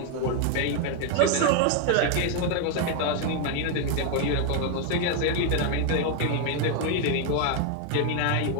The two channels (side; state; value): both; different; correlation 0.01